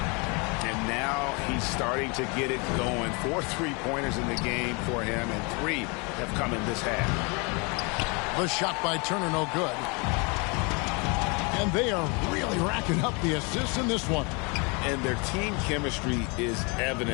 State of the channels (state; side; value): quieter; right; 30.9 dB